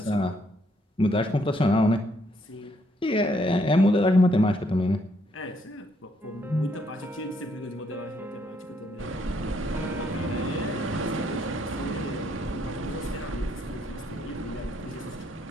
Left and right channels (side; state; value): both; normal; correlation 0.71